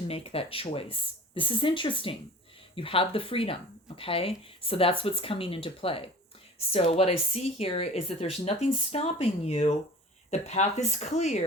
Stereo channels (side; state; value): both; normal; correlation 0.42